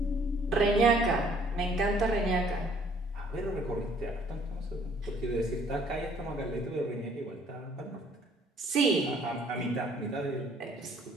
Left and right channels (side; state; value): both; normal; correlation 0.61